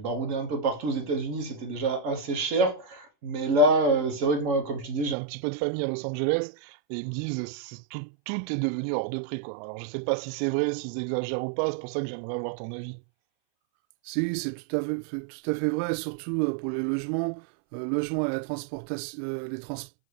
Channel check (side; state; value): left; drops out; at 5.2 s